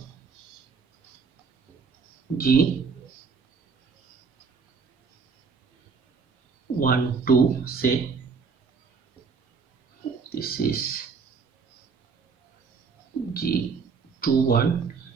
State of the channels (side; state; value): left; quieter; 5.3 dB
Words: G12, say this is G21